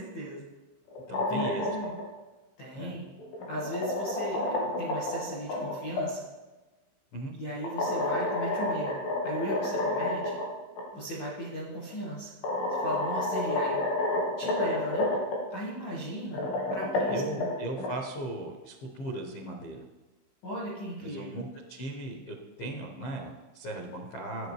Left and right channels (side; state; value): right; late; 15 ms